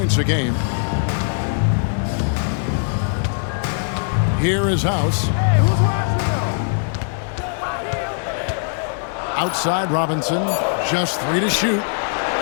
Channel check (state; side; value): silent; right; digital silence